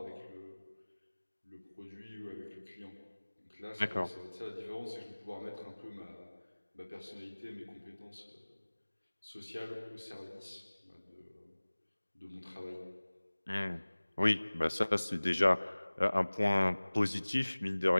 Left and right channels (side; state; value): both; inverted; correlation -1.00